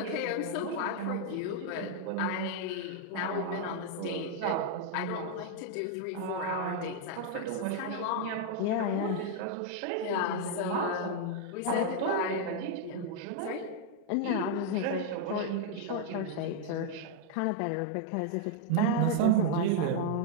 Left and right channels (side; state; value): both; different; correlation 0.00